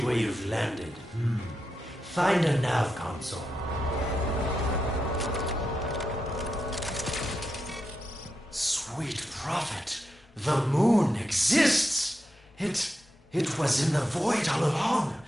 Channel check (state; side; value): normal; both; correlation 0.87